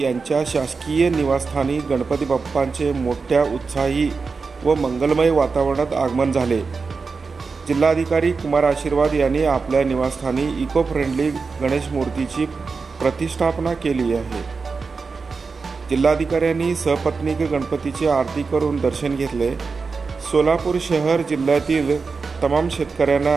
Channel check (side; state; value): left; quieter; 4.7 dB